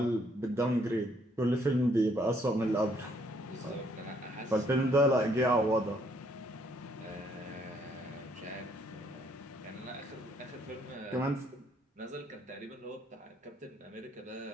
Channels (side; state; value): both; normal; correlation 0.68